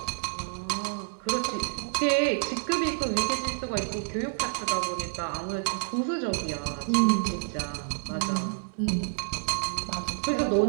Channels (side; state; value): left; silent; digital silence